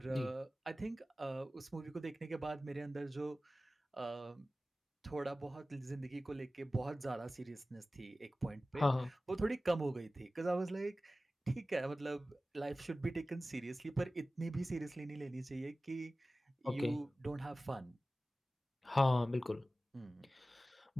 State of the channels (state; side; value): normal; both; correlation 0.96